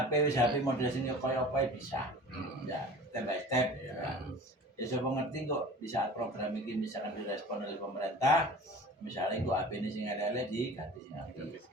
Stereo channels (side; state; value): both; normal; correlation 0.41